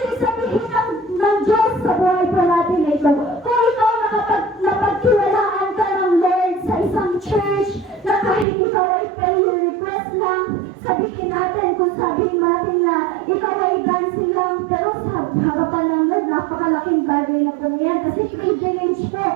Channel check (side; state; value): left; drops out; at 8.5 s